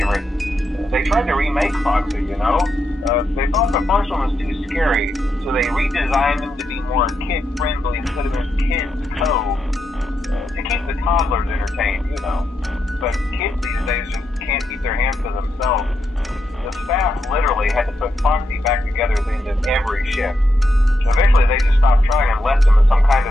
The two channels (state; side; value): normal; both; correlation 0.83